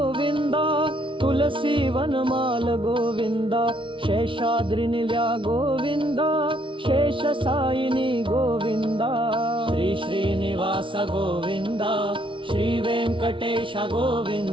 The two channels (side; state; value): left; late; 0.25 ms